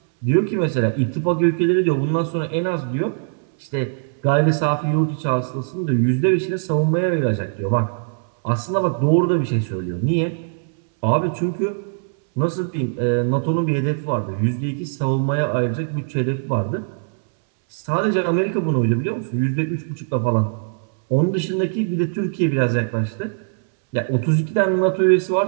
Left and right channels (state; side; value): silent; left; 65 dB below the other